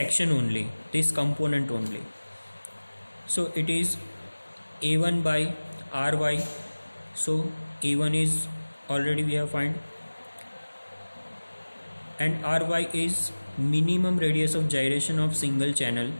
only, this component only. So it is a1 by ry. So a1 is already we have find, and ry is minimum radius of gyration of single channel,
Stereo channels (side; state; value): both; inverted; correlation -1.00